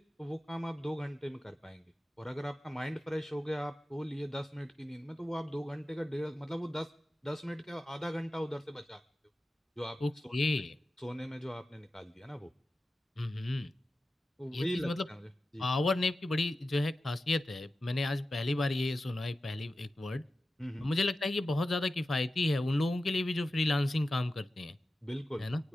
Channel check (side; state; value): both; normal; correlation 0.93